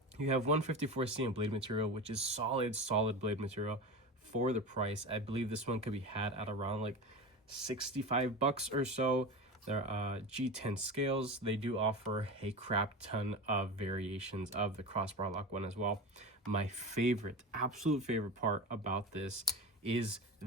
You have 154C in blade material, which is solid blade material for the price. I believe this one could be had at around like $65 or so. There are G10 scales. They do offer a crap ton of variations of the crossbar lock one as well. My absolute favorite part about this is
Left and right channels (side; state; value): both; normal; correlation 0.26